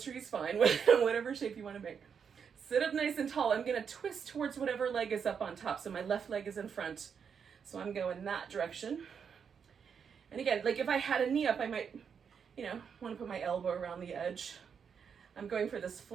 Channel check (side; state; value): left; quieter; 6.9 dB